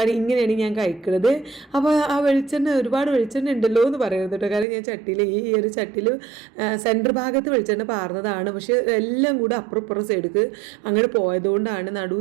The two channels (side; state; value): left; drops out; at 4.7 s